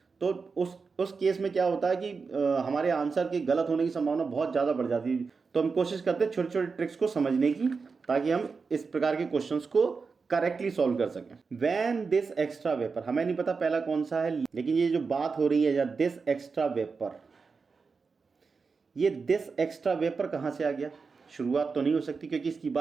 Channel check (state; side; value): quieter; left; 4.8 dB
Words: तो उस केस में क्या होता है कि हमारे आंसर के गलत होने की संभावना बहुत ज़्यादा बढ़ जाती है। तो हम कोशिश करते हैं छोटे छोटे ट्रिक्स को समझने की, ताकि हम इस प्रकार के क्वेश्चंस को करेक्टली सॉल्व कर सकें। वैन दिस एक्स्ट्रा वेपर, हमें नहीं पता पहला कौन सा है, लेकिन ये जो बात हो रही है या दिस एक्स्ट्रा वेपर, ये दिस एक्स्ट्रा वेपर कहाँ से आ गया? शुरुआत तो नहीं हो सकती क्योंकि इसकी